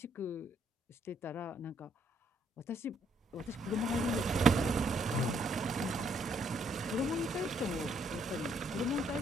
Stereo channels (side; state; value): both; normal; correlation 0.70